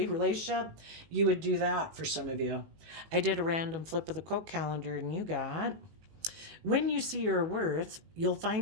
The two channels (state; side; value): late; left; 18 ms